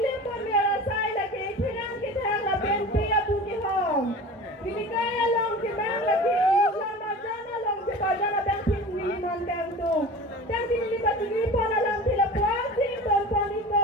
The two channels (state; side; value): normal; both; correlation 0.36